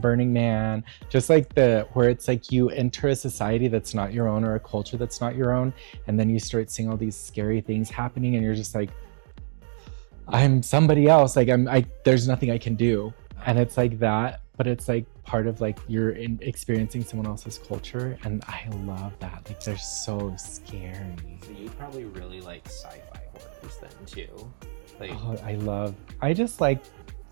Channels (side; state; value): left; silent; digital silence